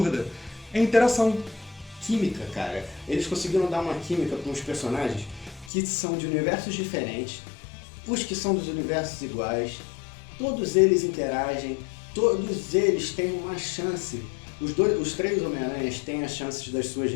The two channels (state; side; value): drops out; right; at 5.7 s